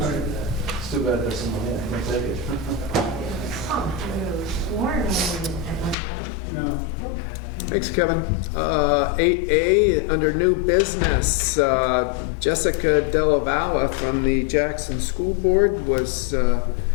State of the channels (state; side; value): drops out; right; at 6.0 s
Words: It's too bad there's someone here. Can't take it. No. Thanks, Kevin. 8A, under new business, Jessica Della from the Jackson School Board was